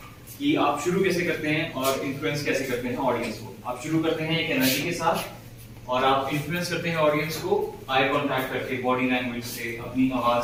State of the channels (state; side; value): identical; both; correlation 1.00